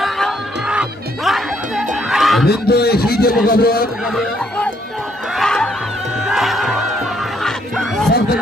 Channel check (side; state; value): both; normal; correlation 0.70